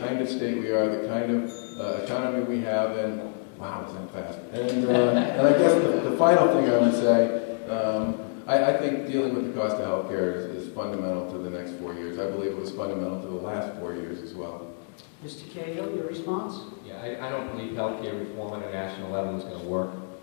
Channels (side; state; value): right; silent; 60 dB below the other